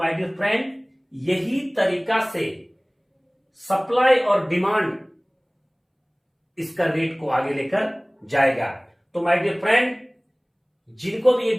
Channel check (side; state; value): both; identical; correlation 1.00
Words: डियर फ्रेंड, यही तरीका से सप्लाई और डिमांड इसका रेट को आगे लेकर जाएगा। तो माय डियर फ्रेंड, जिनको भी ये